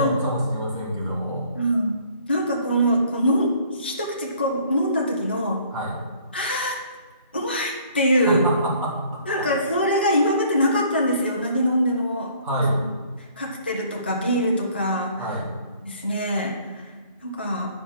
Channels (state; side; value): inverted; both; correlation -0.57